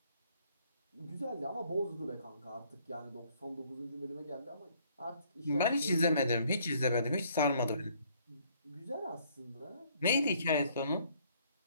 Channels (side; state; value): both; inverted; correlation -0.64